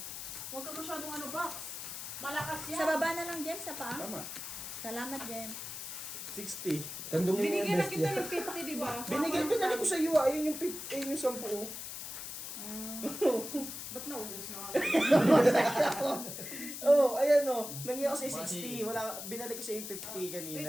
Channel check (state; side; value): noise; left; hiss, 8 dB below the sound